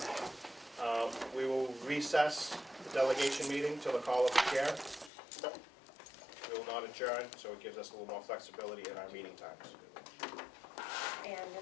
We will recess the delegation meeting till the call of the chair. We will not adjourn, so it gives us a little more flexibility in our meeting times. And the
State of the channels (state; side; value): drops out; right; at 5.1 s